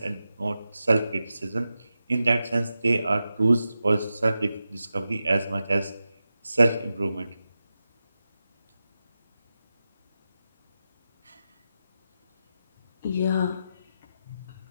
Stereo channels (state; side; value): inverted; both; correlation -0.91